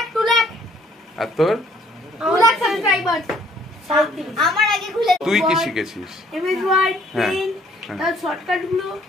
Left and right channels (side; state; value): both; normal; correlation 0.62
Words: লাখ আর তোর 2 লাখ সাবস্ক্রাইবার আমার আগে খুলে তুই কি শিখেছিস এমএস ওয়ার্ড পেন তার শর্টকাট গুলো